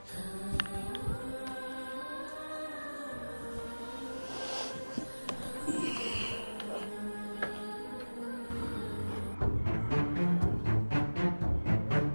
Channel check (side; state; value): both; inverted; correlation -1.00